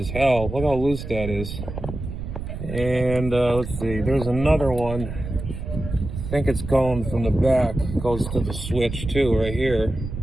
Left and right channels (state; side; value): noise; right; rumble, 7 dB below the sound